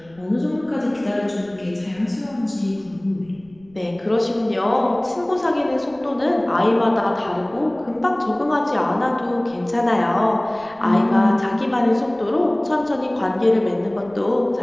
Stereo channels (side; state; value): right; noise; rumble, 27 dB below the sound